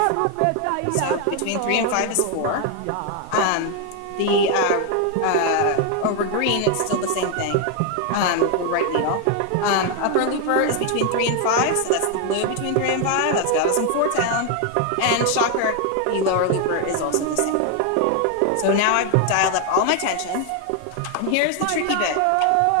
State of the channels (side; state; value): both; different; correlation 0.01